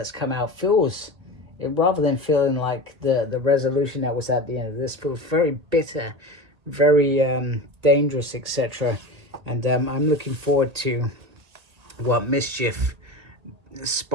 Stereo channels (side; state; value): left; late; 1.7 ms